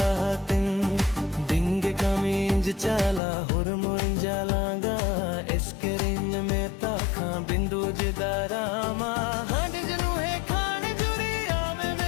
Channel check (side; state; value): right; drops out; at 3.2 s